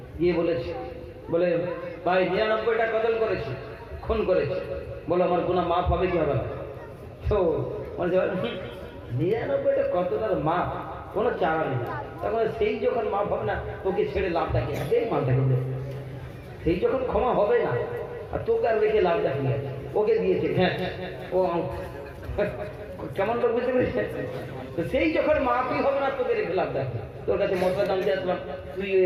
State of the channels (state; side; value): identical; both; correlation 1.00